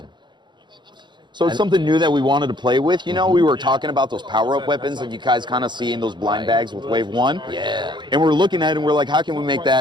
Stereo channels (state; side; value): late; left; 0.22 ms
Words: So it's something new that we wanted to play with. You know, we were talking about those power-up weapons that you guys kind of see in those blind bags with Wave 1. Yeah. And we're looking at it and we're like, how can we make